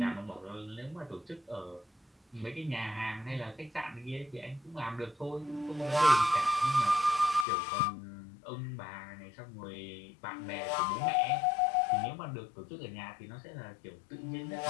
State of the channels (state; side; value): drops out; right; at 7.5 s